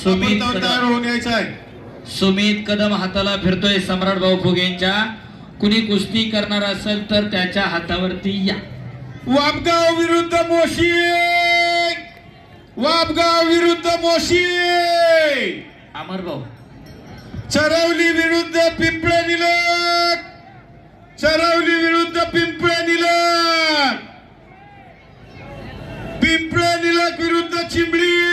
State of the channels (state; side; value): identical; both; correlation 1.00